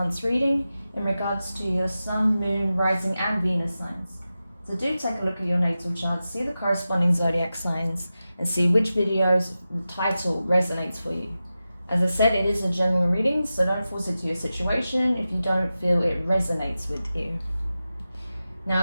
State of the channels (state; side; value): inverted; both; correlation -0.93